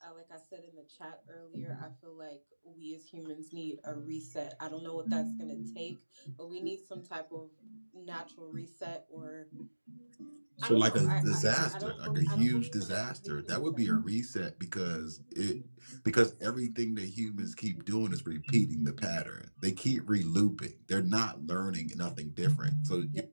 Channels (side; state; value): both; inverted; correlation -1.00